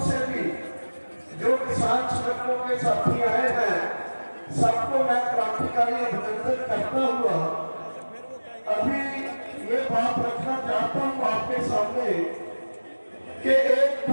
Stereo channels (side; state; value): both; inverted; correlation -1.00